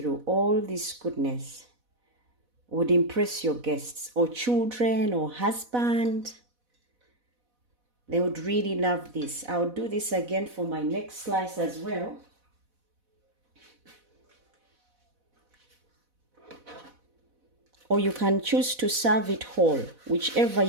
All this goodness would impress your guests or children or husband. They would really love this. I'll do this again for my next slice as well. Or you can choose to serve it whole, whichever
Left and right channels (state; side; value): late; left; 4.1 ms